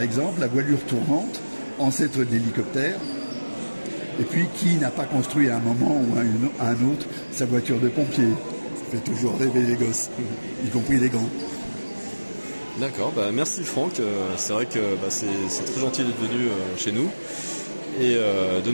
la voilure tournante, ancêtre de l'hélicoptère, et puis qui n'a pas construit à un moment ou à un autre sa voiture de pompier. Ça fait toujours rêver les gosses, y compris les grands. D'accord, merci Franck, c'est vrai que c'est très gentil d'être venu chez nous et de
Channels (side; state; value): both; inverted; correlation -1.00